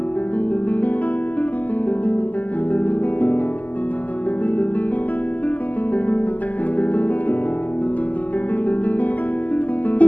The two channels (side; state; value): right; late; 0.079 ms